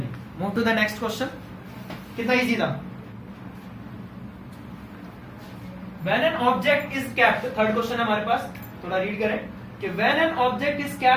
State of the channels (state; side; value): identical; both; correlation 1.00